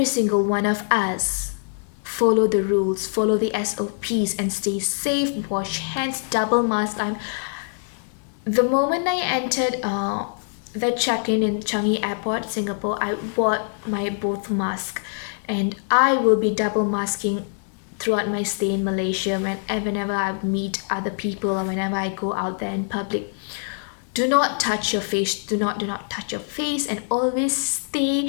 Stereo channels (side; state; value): right; silent; digital silence